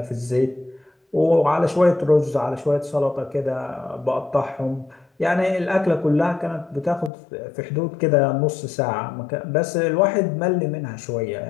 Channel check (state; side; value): drops out; right; at 7.1 s